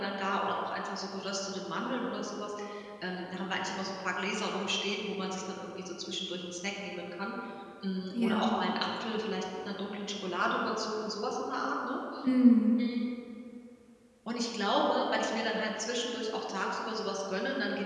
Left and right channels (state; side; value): identical; both; correlation 1.00